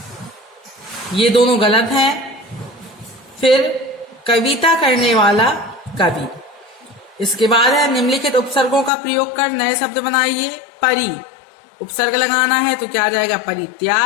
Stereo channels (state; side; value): drops out; right; at 8.9 s